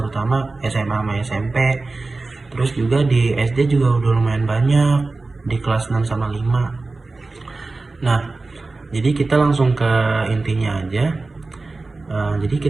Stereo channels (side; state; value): left; quieter; 3.5 dB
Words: SMA sama SMP. Terus juga di SD juga udah lumayan banyak, di kelas 6 sama 5. Nah, jadi kita langsung ke intinya aja. Jadi